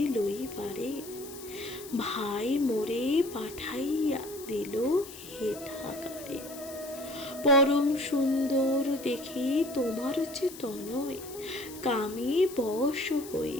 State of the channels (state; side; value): noise; left; hiss, 15 dB below the sound